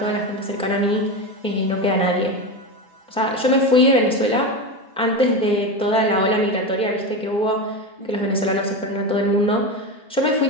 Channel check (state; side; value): normal; both; correlation 0.19